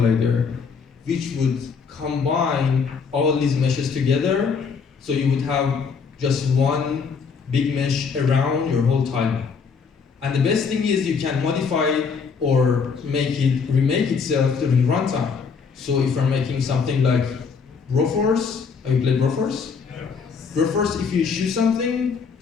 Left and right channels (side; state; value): right; quieter; 5.6 dB